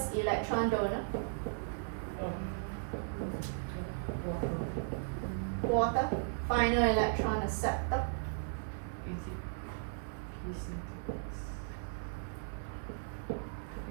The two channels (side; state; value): left; silent; 53 dB below the other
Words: electron donor? Water. Final electron acceptor.